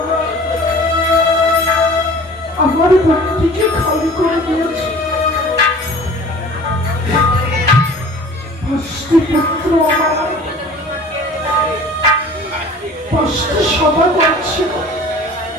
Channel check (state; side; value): normal; both; correlation 0.45